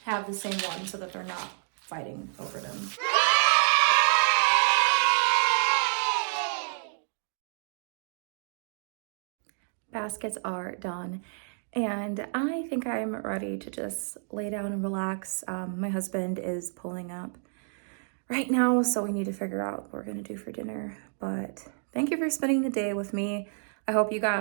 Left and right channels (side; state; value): left; silent; 59 dB below the other